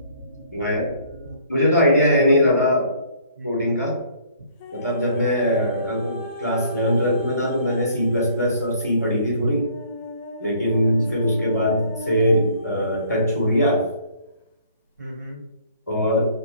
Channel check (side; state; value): both; inverted; correlation -0.58